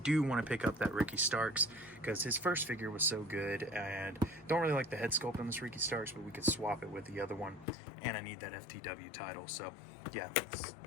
do want to pick up that Ricky Starks, because his first figure was so good, and don't really like the head sculpt on this Ricky Starks, but we could swap it with the other one, and I need that FTW title, so yeah,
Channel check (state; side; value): drops out; right; at 7.7 s